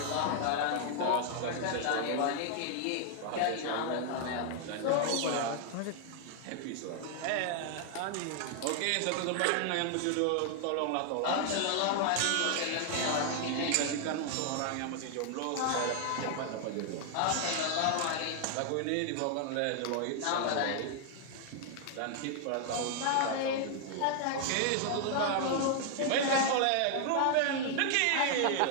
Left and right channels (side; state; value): both; different; correlation 0.00